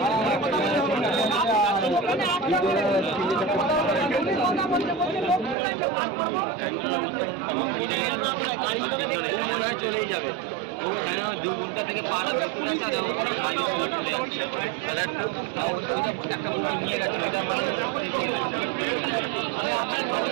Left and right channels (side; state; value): left; drops out; at 5.6 s